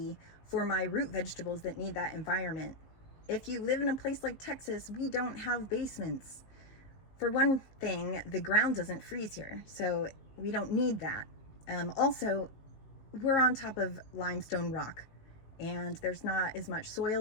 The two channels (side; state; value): right; late; 19 ms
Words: for my root vegetables that need that environment. If you live in a place like Texas, we don't have basements. For one thing, the ground doesn't freeze here, so we don't need that. Also, we're on top of limestone rock, and there's not as much soil